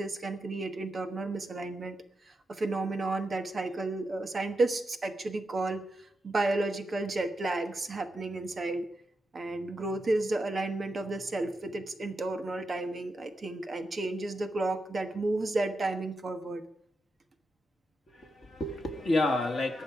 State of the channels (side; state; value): both; normal; correlation 0.86